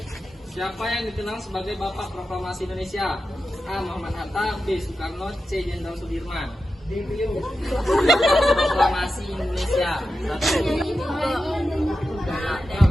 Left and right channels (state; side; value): normal; both; correlation 0.90